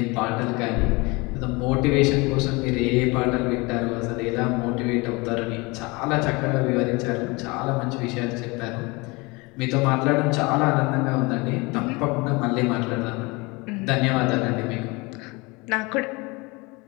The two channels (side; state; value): right; quieter; 25.7 dB